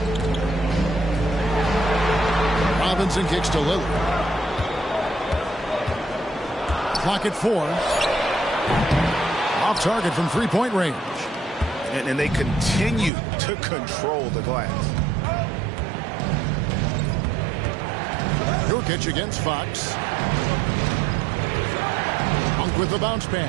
Robinson kicks to Lillard. Clock at 4. Off target from three-point range. And they continue to control the glass. Nurkic against Fox. Monk with the bounce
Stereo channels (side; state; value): left; drops out; at 13.1 s